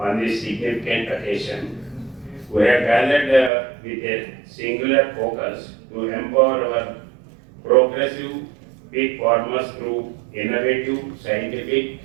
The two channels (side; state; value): left; drops out; at 3.5 s